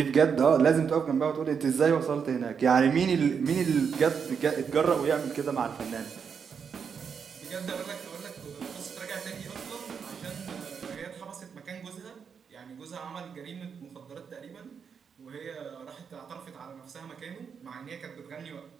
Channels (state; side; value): quieter; left; 6.6 dB